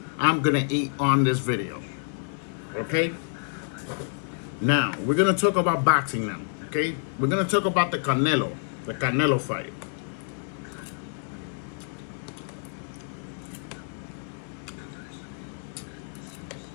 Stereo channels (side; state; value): right; silent; digital silence